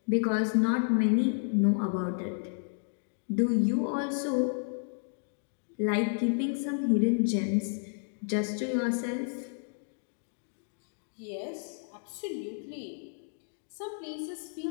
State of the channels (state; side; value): silent; right; digital silence